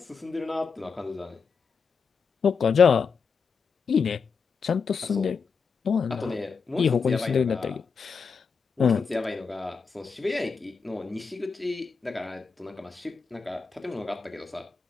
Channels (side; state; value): right; quieter; 5.5 dB